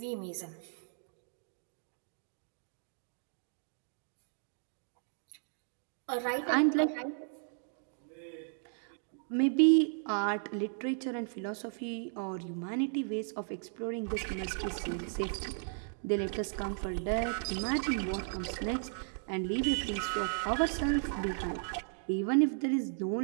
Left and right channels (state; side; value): silent; left; digital silence